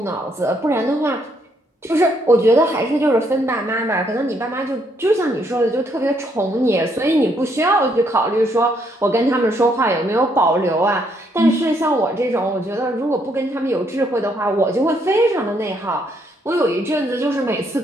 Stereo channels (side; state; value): both; normal; correlation 0.72